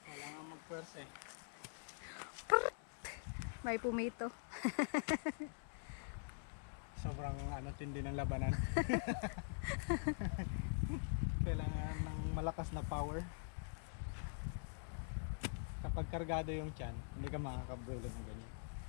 Kailangan magpwersa eh. May pumito. Sobrang tindi ng labanan. Kailangan ng malakas na power. Kapag kargado yung tiyan, hindi ka makakabulo ng ganyan.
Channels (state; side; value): silent; right; digital silence